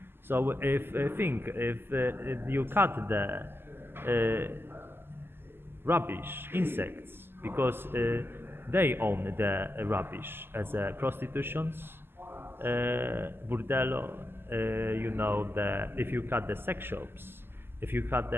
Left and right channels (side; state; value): left; late; 0.11 ms